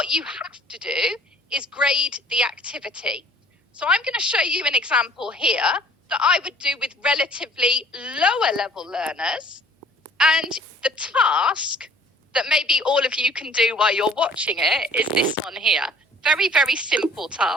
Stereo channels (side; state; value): both; normal; correlation 0.53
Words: you have to do is grade the activity. So I'm going to show you an example here that I would do with relatively lower level learners. And the task that maybe all of you can do while you're watching it is this one here. Very, very simple